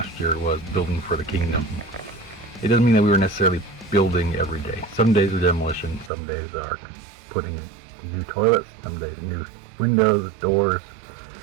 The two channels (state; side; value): drops out; left; at 6.1 s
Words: year was building for the kingdom, it doesn't mean that we were necessarily building every day. Some days are demolition, some days are putting in new toilets, some days new windows, doors,